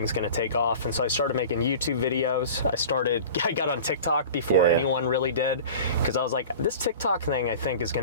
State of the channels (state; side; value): inverted; both; correlation -0.38